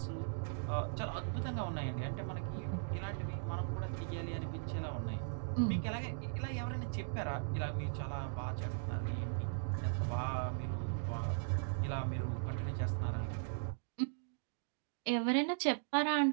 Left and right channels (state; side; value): silent; left; digital silence